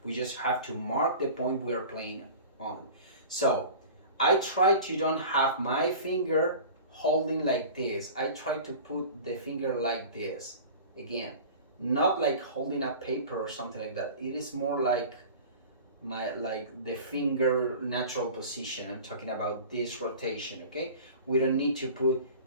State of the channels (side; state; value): both; inverted; correlation -0.38